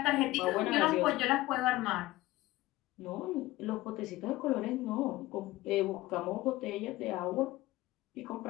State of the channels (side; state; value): right; quieter; 18.0 dB